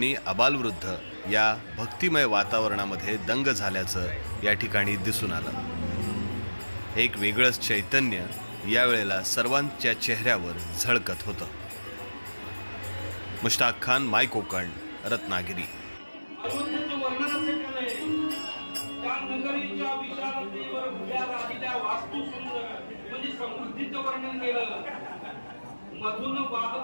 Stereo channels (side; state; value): both; inverted; correlation -1.00